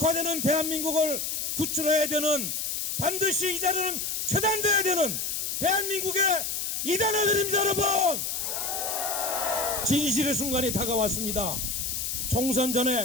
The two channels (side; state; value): left; noise; hiss, 2 dB below the sound